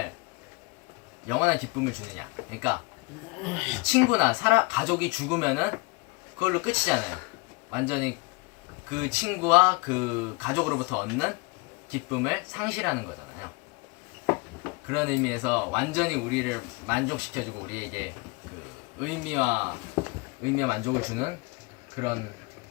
영원한 기쁨을 주느냐. 그러니까 친구나 가족이 죽으면은 그걸로 끝이잖아요. 완전히 그 친구와 그 가족으로부터 얻는 기쁨을 상실하는 거잖아요. 그런 의미에서 완전히 우리를 만족시켜주고 우리에게 그 의미와 만족을 주는 그런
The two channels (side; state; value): right; quieter; 27.5 dB